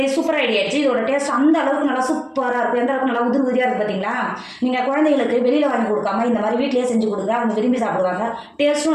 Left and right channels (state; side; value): identical; both; correlation 1.00